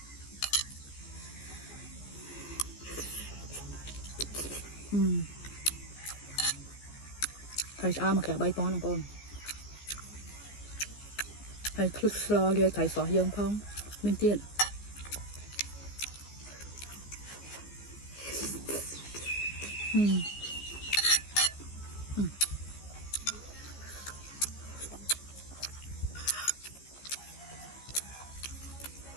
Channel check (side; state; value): right; late; 15 ms